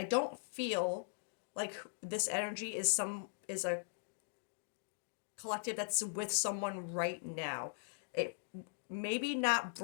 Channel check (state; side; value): silent; right; digital silence